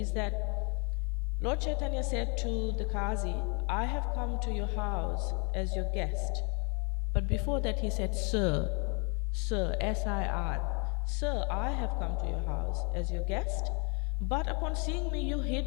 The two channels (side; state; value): right; quieter; 35.5 dB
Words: that Lord Caitanya said to the Qazi, I have come to your house as your guest. But before that he said, Sir, S-I-R, Sir, I have come to your house as your guest, but upon seeing me you